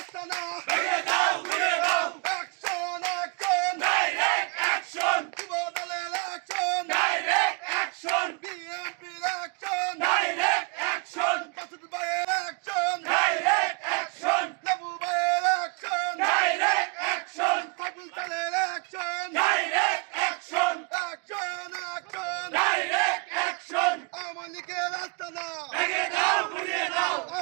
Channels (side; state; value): left; quieter; 31.7 dB